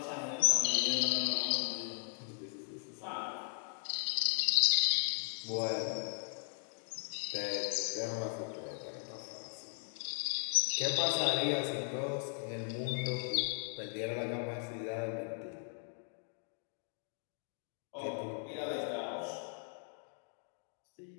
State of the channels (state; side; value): silent; right; 53 dB below the other